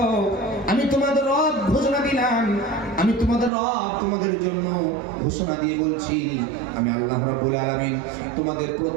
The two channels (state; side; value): drops out; left; at 3.5 s